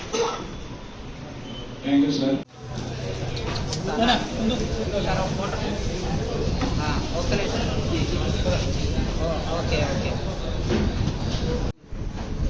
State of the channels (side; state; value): both; identical; correlation 1.00